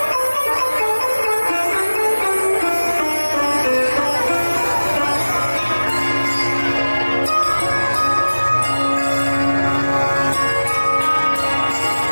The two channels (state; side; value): inverted; both; correlation -1.00